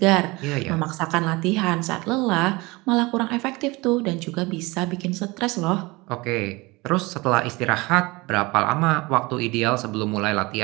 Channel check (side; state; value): left; quieter; 23.4 dB